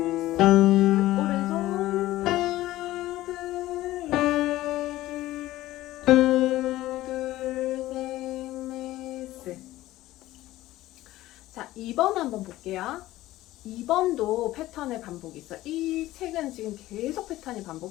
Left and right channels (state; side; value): quieter; right; 16.1 dB